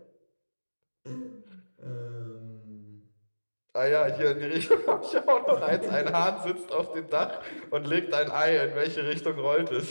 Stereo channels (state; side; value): inverted; both; correlation -1.00